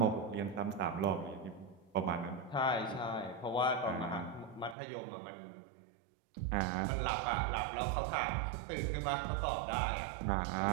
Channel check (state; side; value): drops out; left; at 4.8 s